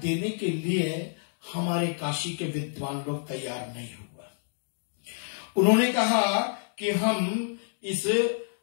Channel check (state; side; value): silent; right; digital silence